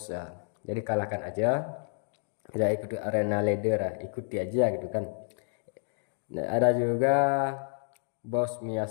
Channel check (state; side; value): silent; right; 58 dB below the other